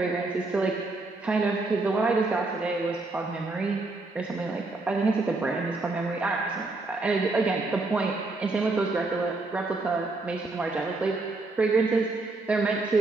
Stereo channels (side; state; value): left; quieter; 3.3 dB